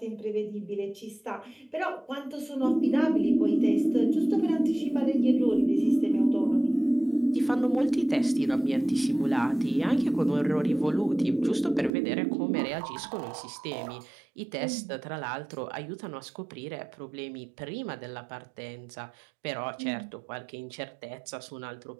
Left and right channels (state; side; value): drops out; left; at 11.9 s